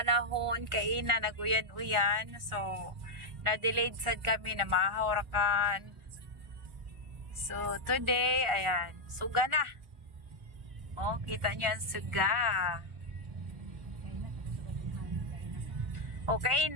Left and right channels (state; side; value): late; left; 1.4 ms